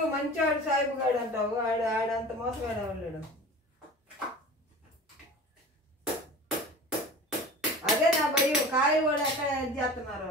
మంచివాడు సాయిబు గాడు అంటావు, ఆడంత మోసగాడు ఎవరు. అదే నా భయం, కాయలు కూడా ఎక్కడ చేస్తున్నారు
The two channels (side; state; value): both; normal; correlation 0.38